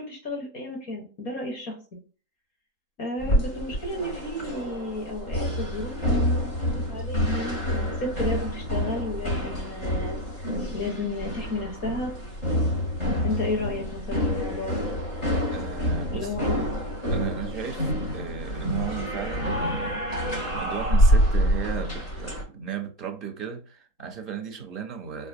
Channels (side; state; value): right; late; 3.8 ms